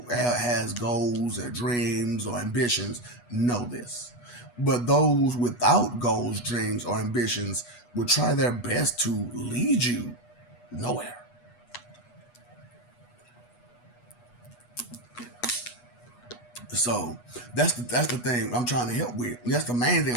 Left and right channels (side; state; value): right; late; 8.2 ms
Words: has goals or dreams or ambitions know this. But those without goals, dreams, or ambitions will try their best to lead you nowhere. So that's the thing I'm trying to help with. That's the main thing